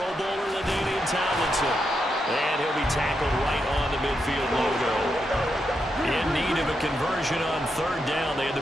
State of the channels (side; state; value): both; normal; correlation 0.83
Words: Bowler, LaDainian Tomlinson. And he'll be tackled right on the midfield logo. In need of a conversion on 3rd down. They had